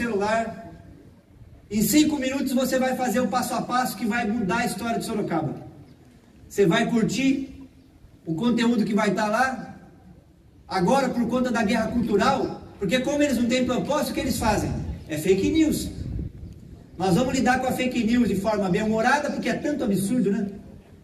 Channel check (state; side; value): identical; both; correlation 1.00